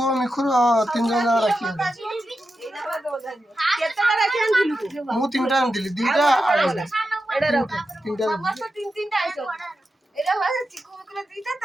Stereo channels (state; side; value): normal; both; correlation 0.90